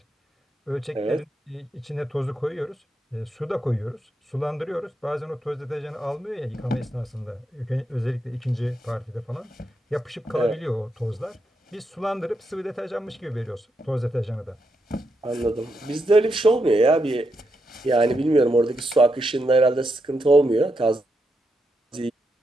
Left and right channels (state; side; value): normal; both; correlation 0.83